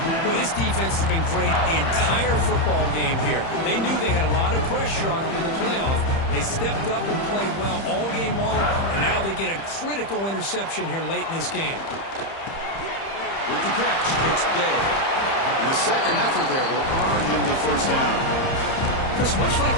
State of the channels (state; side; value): late; right; 30 ms